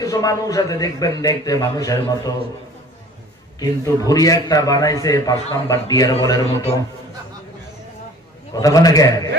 কিছু মানুষ আছে, দেখবেন দেখতে মানুষের মতো, কিন্তু ভুঁড়ি একটা বানাইছে 5 নাম্বার ডিয়ার বলের মতো। কথা বলে কেন?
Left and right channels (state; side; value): normal; both; correlation 0.48